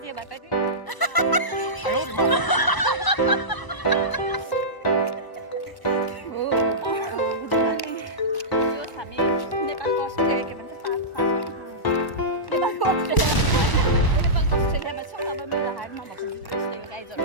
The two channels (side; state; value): right; late; 1.0 ms